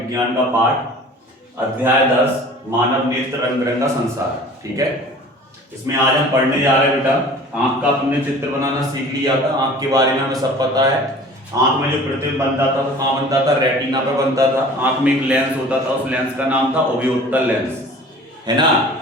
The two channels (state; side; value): normal; both; correlation 0.45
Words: का पाठ, अध्याय 10 मानव नेत्र रंग बिरंगा संसार। ठीक है, इसमें आज हम पढ़ने जा रहे हैं बेटा, आंख का अपने चित्र बनाना सीख लिया था। आंख के बारे में हमें सब पता है। आंख में जो प्रतिबिंब बनता था वो कहाँ बनता था? रेटिना पर बनता था। आंख में एक लेंस होता था, उस लेंस का नाम था ओवियोत्तल लेंस, है ना,